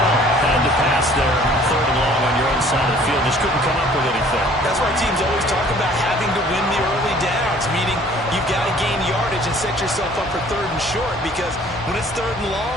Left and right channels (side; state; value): both; normal; correlation 0.54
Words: Had to pass there, third and long on your own side of the field. Just couldn't come up with anything. That's why teams always talk about having to win the early downs, meaning you've got to gain yardage and set yourself up for third and short, because when it's third and